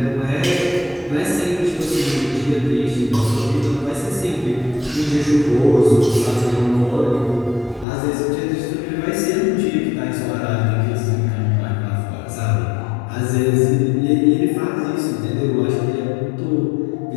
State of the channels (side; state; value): right; drops out; at 7.9 s